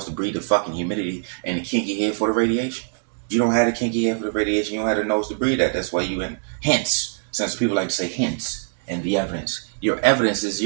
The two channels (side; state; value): left; silent; digital silence